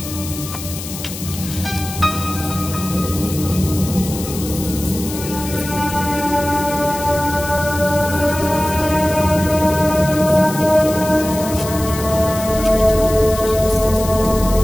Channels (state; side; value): noise; left; hiss, 10 dB below the sound